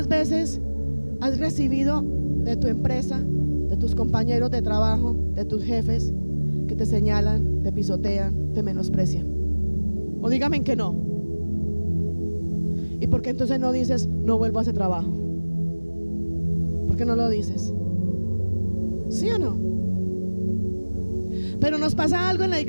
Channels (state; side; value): inverted; both; correlation -1.00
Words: veces has recibido de tu empresa, de tus compañeros de trabajo, de tus jefes, que te señalan, te pisotean, te menosprecian? O dígame que no. ¿Y por qué entonces no dices: no vuelvo a ese trabajo? ¿Por qué no lo dices? ¿Sí o no? Pero nos pasa algo en la